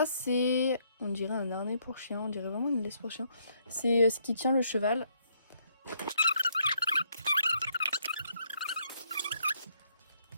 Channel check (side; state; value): both; inverted; correlation -0.72